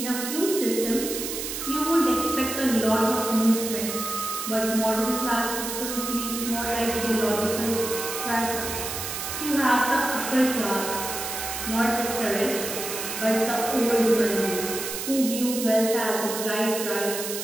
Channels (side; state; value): right; noise; hiss, 5 dB below the sound